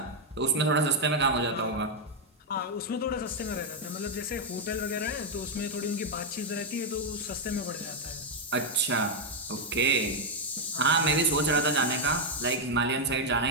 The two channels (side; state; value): both; normal; correlation 0.01